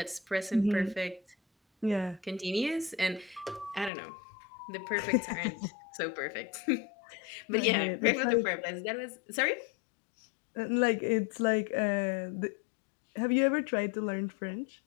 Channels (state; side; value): drops out; right; at 3.9 s